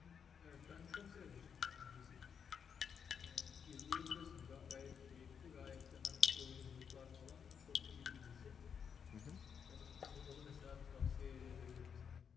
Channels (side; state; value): right; quieter; 7.1 dB